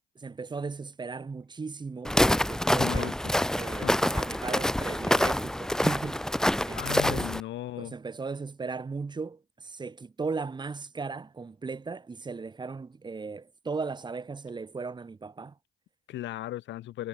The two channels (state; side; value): normal; both; correlation 0.82